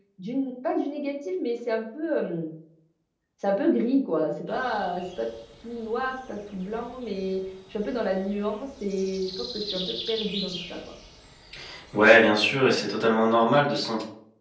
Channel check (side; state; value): both; identical; correlation 1.00